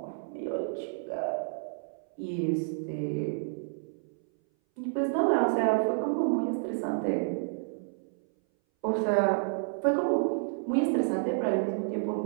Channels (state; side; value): silent; left; 58 dB below the other